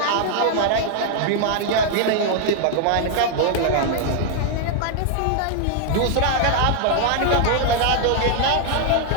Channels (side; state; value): both; different; correlation 0.00